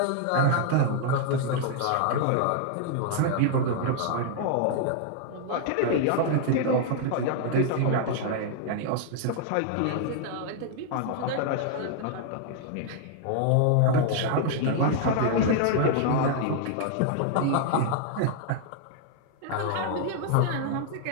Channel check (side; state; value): both; different; correlation -0.01